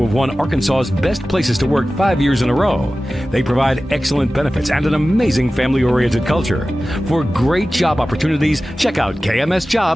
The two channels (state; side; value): normal; both; correlation 0.96